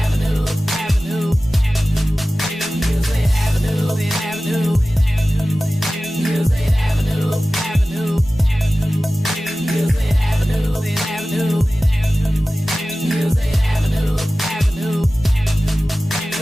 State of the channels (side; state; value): both; normal; correlation 0.96